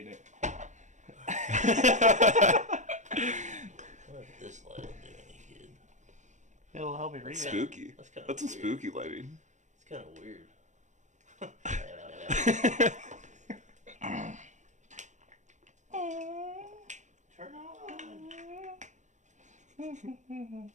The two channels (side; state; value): left; late; 0.35 ms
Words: it. What if this light will do any good? It'll help me read it. Spooky. That's some weird. spooky lighting. It's kind of weird. Turn on.